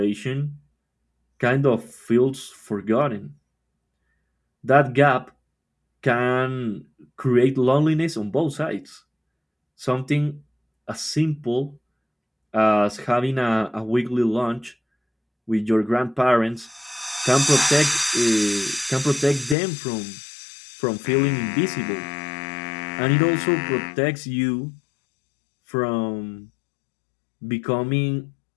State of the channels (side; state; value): right; drops out; at 19.6 s